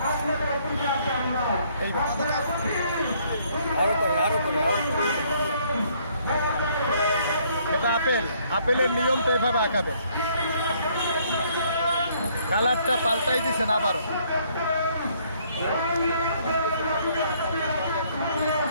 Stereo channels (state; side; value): inverted; both; correlation -0.66